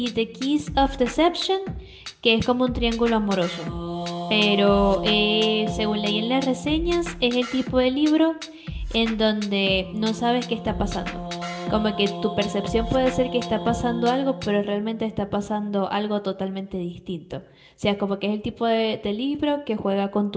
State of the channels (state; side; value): identical; both; correlation 1.00